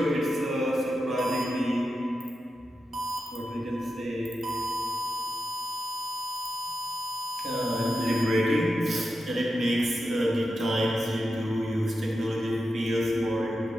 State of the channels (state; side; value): normal; both; correlation 0.89